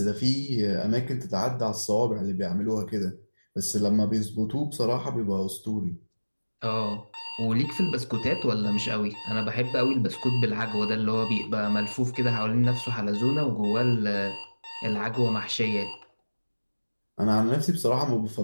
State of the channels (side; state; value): both; inverted; correlation -1.00